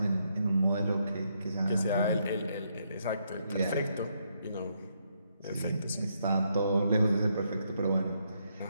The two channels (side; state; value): both; inverted; correlation -0.76